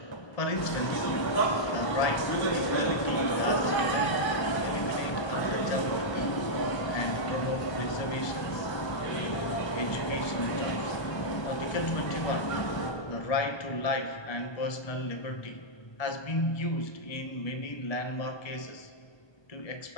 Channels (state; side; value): late; right; 1.2 ms